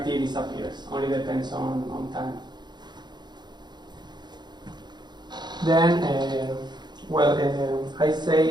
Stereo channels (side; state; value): left; late; 0.21 ms